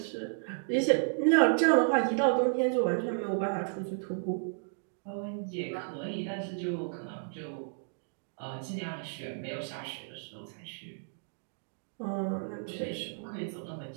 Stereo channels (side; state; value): left; silent; digital silence